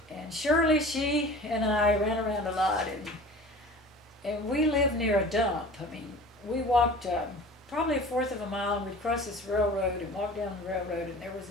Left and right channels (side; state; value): both; normal; correlation 0.40